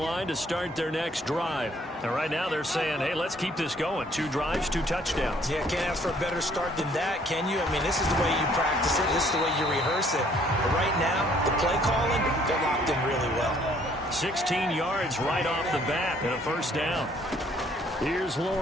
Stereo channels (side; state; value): both; normal; correlation 0.62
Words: to start their next drive. And right now they're saying, hey, let's keep this going. 2 drives, 2 touchdowns. Yeah, can't ask for a better start than that, can you? I mean, this is the way you practice it. This is the way you rehearse it. But right now, the play calling, they're locked in really well. 16 yards right off the bat and a first down. Here's